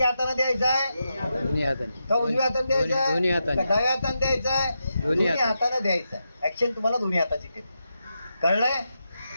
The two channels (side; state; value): both; inverted; correlation -0.86